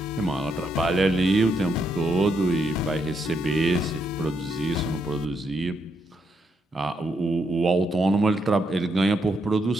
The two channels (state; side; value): normal; both; correlation 0.78